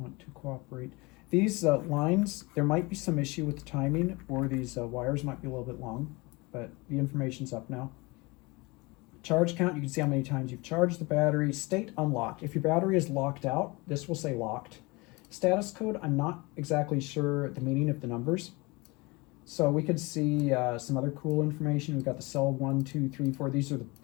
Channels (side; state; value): right; quieter; 25.2 dB